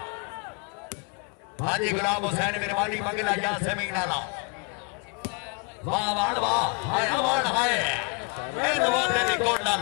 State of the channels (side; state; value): right; quieter; 33.3 dB